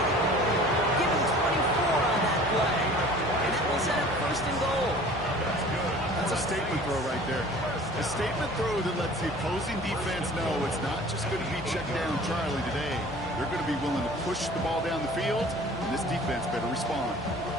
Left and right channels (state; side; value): normal; both; correlation 0.46